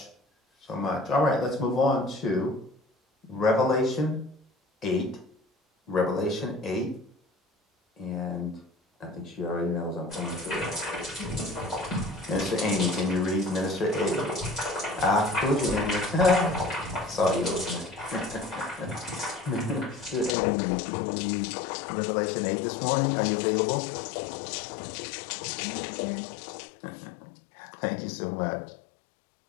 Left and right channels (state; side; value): drops out; right; at 20.4 s